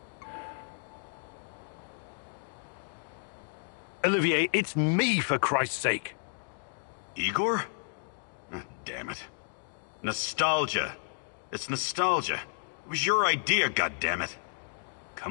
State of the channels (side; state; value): right; silent; digital silence